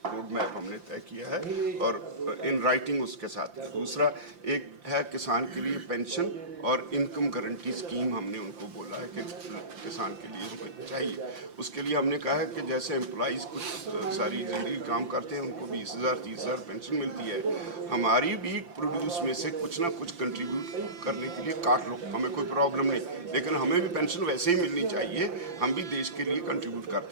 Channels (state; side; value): late; left; 5.8 ms